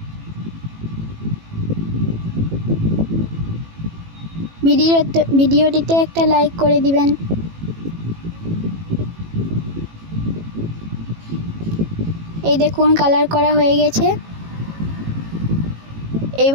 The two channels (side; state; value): left; late; 18 ms